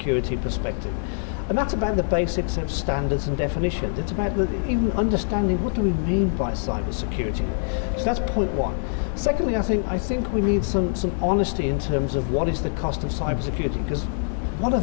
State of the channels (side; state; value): right; silent; 62 dB below the other